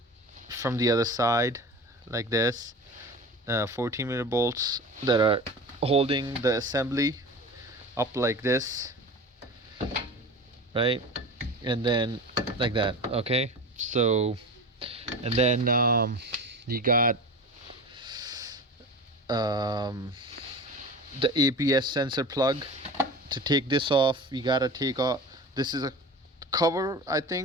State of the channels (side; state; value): both; normal; correlation 0.33